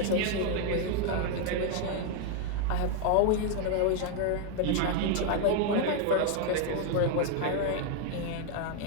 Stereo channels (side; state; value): both; different; correlation 0.01